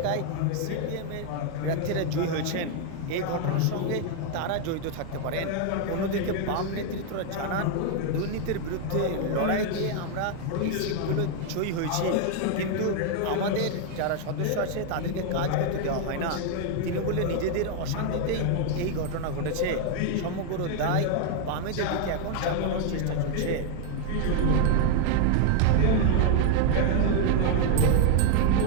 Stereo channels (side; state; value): both; different; correlation 0.00